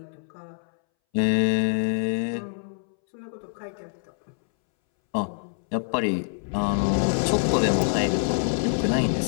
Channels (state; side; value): silent; right; 61 dB below the other